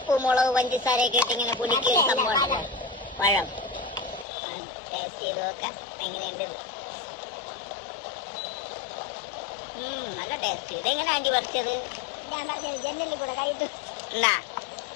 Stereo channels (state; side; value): drops out; right; at 4.2 s